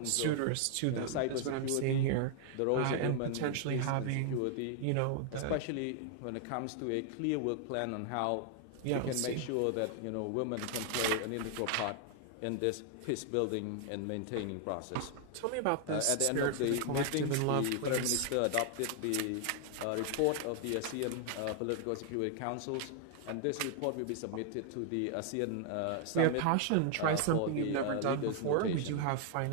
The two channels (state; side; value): different; both; correlation 0.00